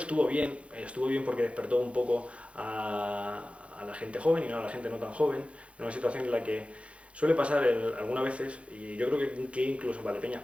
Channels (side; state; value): left; late; 0.062 ms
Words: bien porque despertó un poco a la gente joven y no a la gente no tan joven, en una situación en la que suele pasar algunas veces, y yo creo que incluso en Valdepeñas